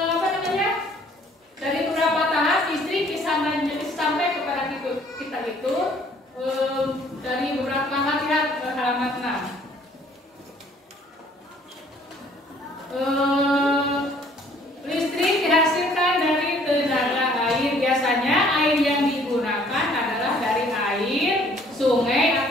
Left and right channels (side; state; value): both; normal; correlation 0.58